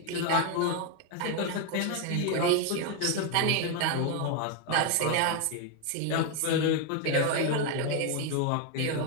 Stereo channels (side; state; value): both; different; correlation 0.01